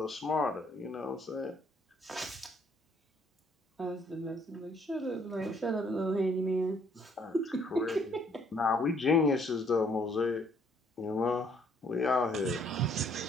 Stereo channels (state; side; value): normal; both; correlation 0.65